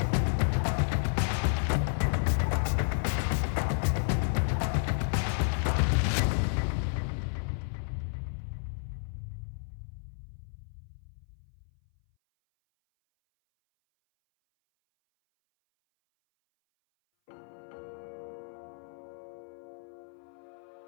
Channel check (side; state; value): right; silent; 57 dB below the other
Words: a man who would rise from the chaos to carry the revolution's ambition across Europe. From the streets of Paris to the courts of Versailles, from famine and despair to triumph and tyranny, the French Revolution remains one of the most dramatic, human, and transformative events in history.